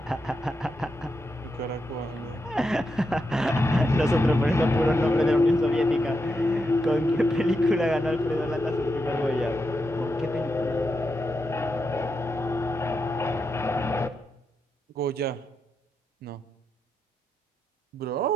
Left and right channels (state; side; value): normal; both; correlation 0.85